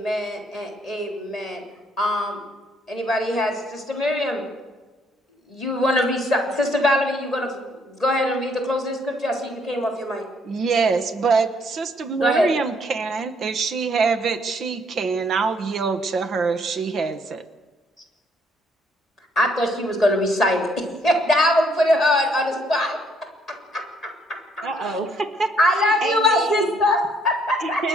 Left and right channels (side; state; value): both; normal; correlation 0.67